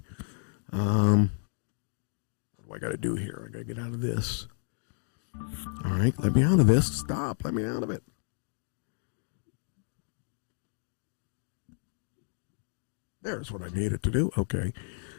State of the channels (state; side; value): silent; right; digital silence